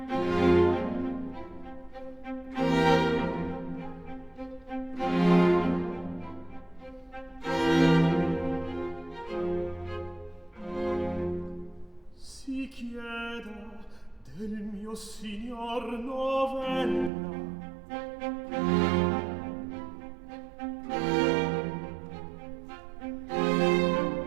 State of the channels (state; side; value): drops out; left; at 17.1 s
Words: Si chieda del mio signor novella.